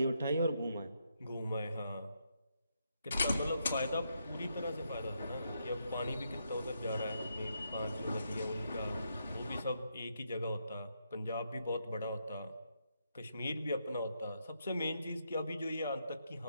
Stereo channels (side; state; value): both; inverted; correlation -0.80